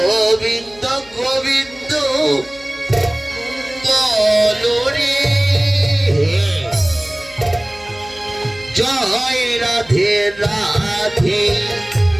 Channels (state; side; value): noise; left; hum, 24 dB below the sound